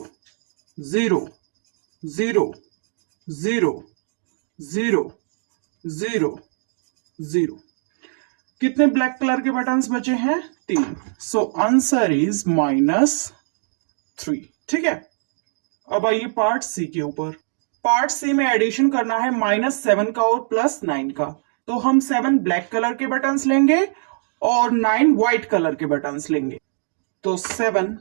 0 0 0 0 0 0। कितने ब्लैक कलर के बटन्स बचे हैं? 3। So answer is -3। ठीक है। अब आइए पार्ट सी के ऊपर। पार्ट सी में एडिशन करना है -7 का और +9 का। तो हम 7 ब्लैक कलर के बटन्स लेंगे और 9 व्हाइट कलर के बटन्स लेंगे। तो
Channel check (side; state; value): left; silent; digital silence